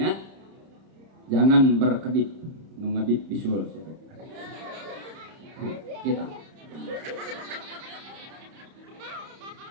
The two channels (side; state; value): left; late; 31 ms